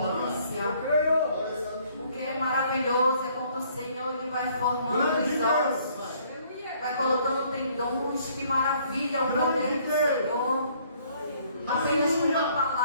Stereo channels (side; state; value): both; inverted; correlation -0.62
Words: O que é maravilhoso é quando o Senhor Ele vai formando os ossos, vai colocando tendões. Que maravilha o poder do Senhor. Apenas com uma